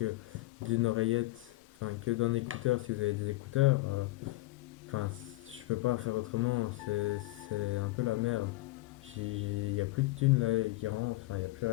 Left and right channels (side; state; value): right; quieter; 19.8 dB